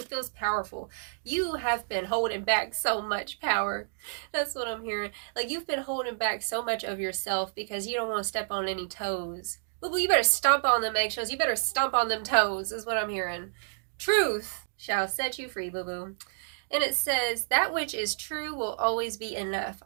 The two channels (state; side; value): silent; left; digital silence